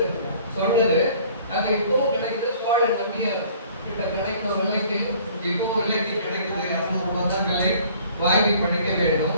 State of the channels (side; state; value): both; inverted; correlation -0.53